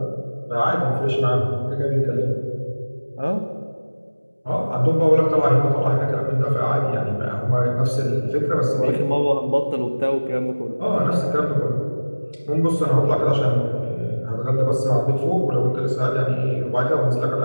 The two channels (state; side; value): inverted; both; correlation -1.00